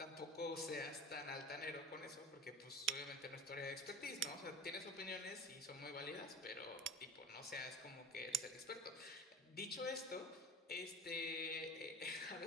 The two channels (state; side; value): normal; both; correlation 0.36